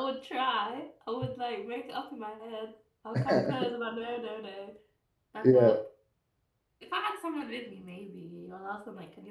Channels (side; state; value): both; identical; correlation 1.00